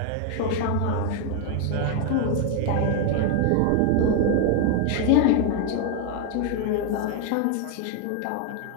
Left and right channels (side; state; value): both; different; correlation 0.01